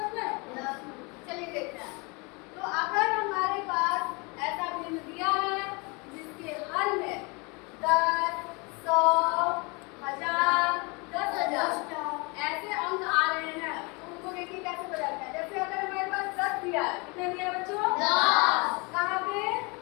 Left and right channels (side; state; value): right; quieter; 29.3 dB